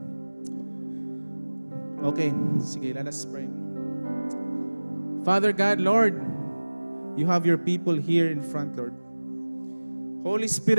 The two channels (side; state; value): both; inverted; correlation -1.00